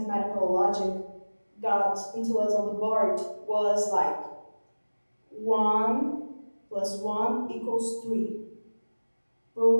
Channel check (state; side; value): inverted; both; correlation -1.00